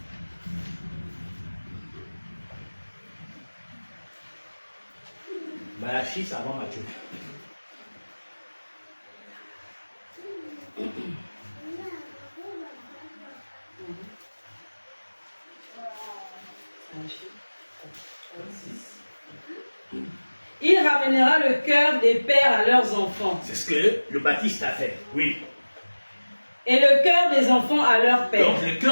Malachie, c'est avant Matthieu. Il ramènera le cœur des pères à leurs enfants. C'est ce que le Baptiste a fait, oui. Et le cœur des enfants à leur père. Donc le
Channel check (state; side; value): inverted; both; correlation -1.00